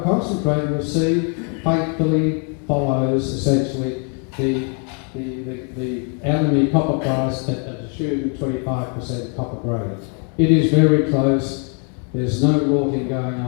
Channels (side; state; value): right; quieter; 39.6 dB